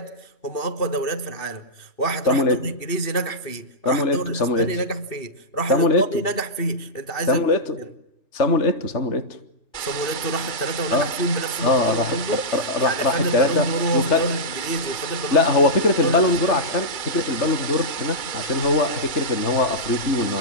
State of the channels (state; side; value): late; right; 2.7 ms